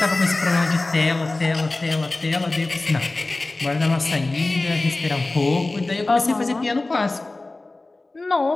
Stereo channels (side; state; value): right; quieter; 3.1 dB